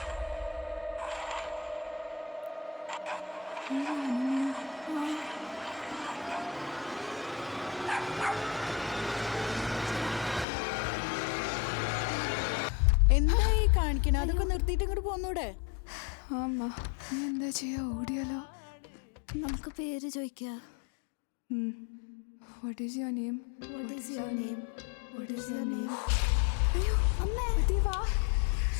എന്തായി കാണിക്കണ? അതൊക്കെ നിർത്തിയിട്ട് ഇങ്ങോട്ട് പോന്നൂടെ? അമ്മ നീ എന്താ ചെയ്യാ? ഓടിയാലോ? നമുക്ക് പേര് ചോദിക്കാം. What is your name? What is your name? What is your name? അയ്യോ അമ്മേ ദേവാ.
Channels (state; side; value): drops out; right; at 10.5 s